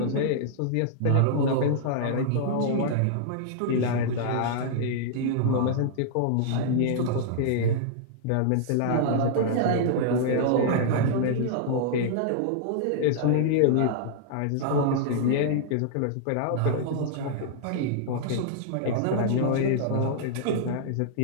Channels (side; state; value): both; different; correlation -0.01